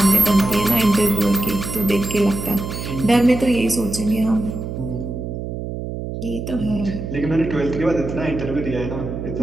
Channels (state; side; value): noise; right; hum, 6 dB below the sound